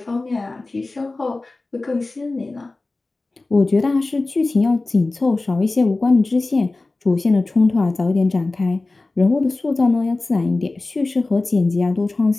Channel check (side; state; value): right; quieter; 3.3 dB